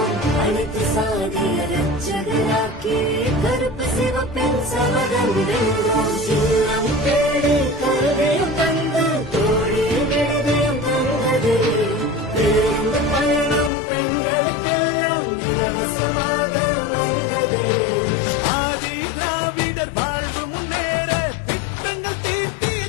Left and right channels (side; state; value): right; drops out; at 13.7 s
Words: அனைத்து சாதிய ரட்சகராக்கி கருப்பு சிவப்பின் சபதம் வென்றோம். சின்னம் தேடி கருவியும் தந்து தோழி விடுதயம் தந்தது. பேருந்து பயணம் பெண்களுக்கெல்லாம் இலவசமாக வந்தது. ஆதி திராவிடர் வாழ்வு முன்னேற திட்டங்கள் தீட்டி